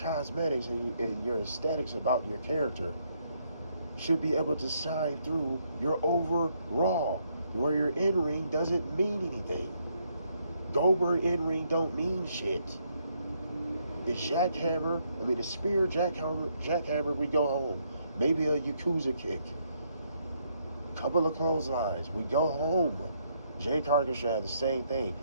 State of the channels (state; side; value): inverted; both; correlation -0.73